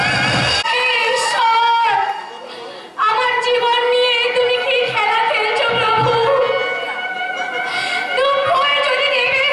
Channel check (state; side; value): identical; both; correlation 1.00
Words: ঈশ্বর, আমার জীবন নিয়ে তুমি কি খেলা খেলছো প্রভু? দুঃখ যদি দেবে